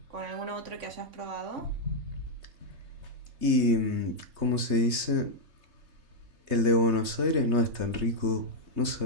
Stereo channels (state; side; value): late; left; 3.2 ms